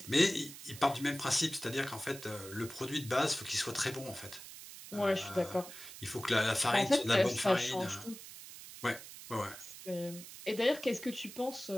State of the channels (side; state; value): right; noise; hiss, 14 dB below the sound